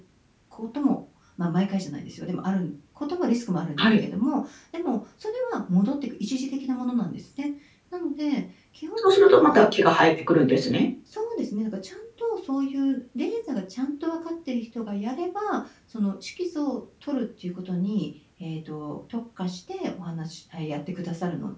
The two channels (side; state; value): both; identical; correlation 1.00